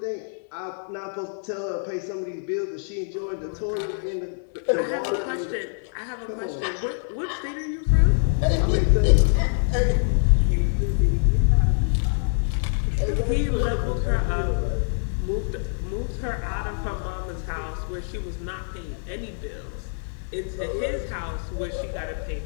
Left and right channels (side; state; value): right; silent; digital silence